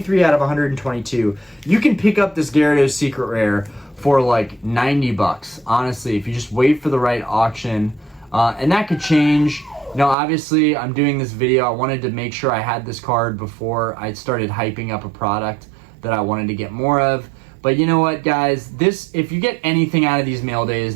of 122. You can pick up this Gyarados Secret Rare for like $90, honestly, if you just wait for the right auction. And that could change. You know, obviously, I'm doing this video. I wanted to make sure I had this card before I started hyping up a product that I wanted to get more of. But you know what, guys? If you get anything out of these mail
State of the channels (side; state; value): left; drops out; at 10.2 s